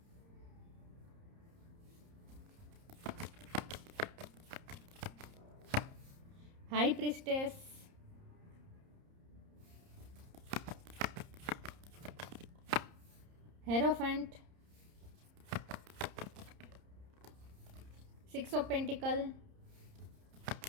high priestess, hierophant, 6 of pentacles,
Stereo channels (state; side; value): late; left; 30 ms